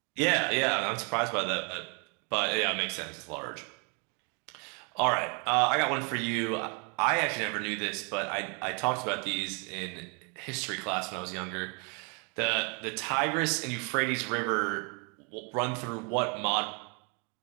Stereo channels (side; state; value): left; quieter; 35.0 dB